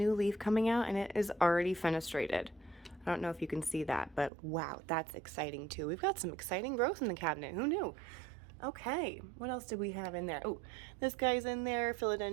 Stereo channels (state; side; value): drops out; left; at 4.3 s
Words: leaf coming out, and it is already fenestrated. I don't know if you can see that, but wow, that's exciting too. We've got some exciting growth in the cabinet. Who knew? Okay, what else did we have in there? Oh, this guy's in there,